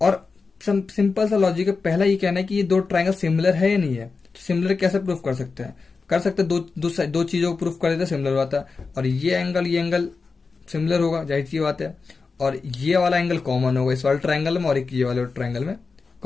सिंपल सा लॉजिक है, पहला ये कहना है कि ये 2 ट्राइंगल सिमिलर है या नहीं है। तो सिमिलर कैसे प्रूफ कर सकते हैं? दो चीजों को प्रूफ कर देते हैं, सिमिलर होता है। और ये एंगल सिमिलर होगा, जाहिर सी बात है, और ये वाला एंगल कॉमन होगा इस वाले ट्राइंगल में, और एक ये वाले ट्राइंगल में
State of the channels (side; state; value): right; quieter; 4.5 dB